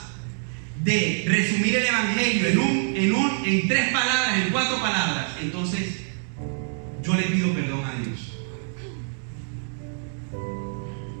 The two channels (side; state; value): left; silent; digital silence